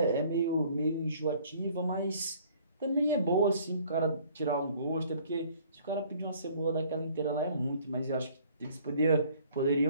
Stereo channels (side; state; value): both; inverted; correlation -0.57